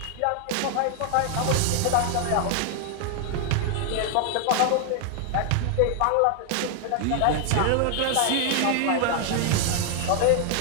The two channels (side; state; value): both; different; correlation 0.00